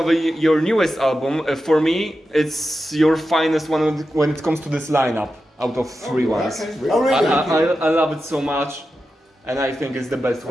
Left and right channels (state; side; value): normal; both; correlation 0.91